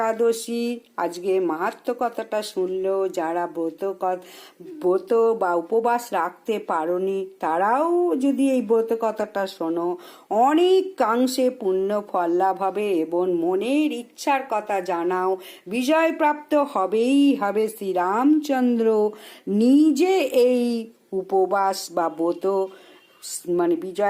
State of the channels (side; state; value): both; identical; correlation 1.00